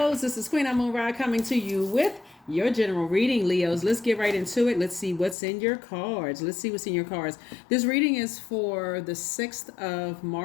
This is Queen Amun Ra coming to you with your general reading, Leos. Let's get right into it. Let's see what's in your cards. This reading is for the 6th of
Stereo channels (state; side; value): drops out; right; at 5.4 s